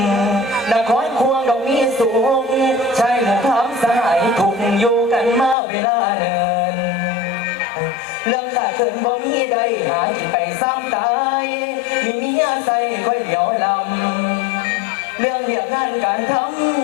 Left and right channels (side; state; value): right; drops out; at 5.6 s